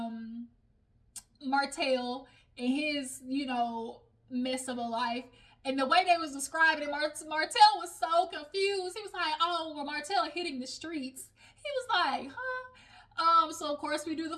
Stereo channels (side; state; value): both; identical; correlation 1.00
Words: Martell and his, mess of a life. And the way they was describing it, Martell was so confused. He was like, oh, well, Martell hitting the streets. He was like, huh? So, of course, we do